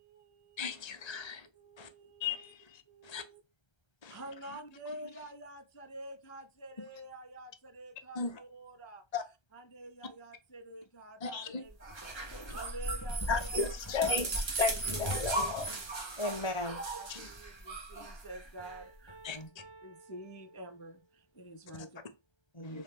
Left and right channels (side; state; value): right; late; 1.3 ms